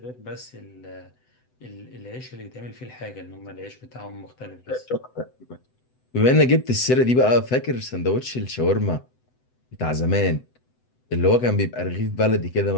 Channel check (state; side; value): late; right; 7.9 ms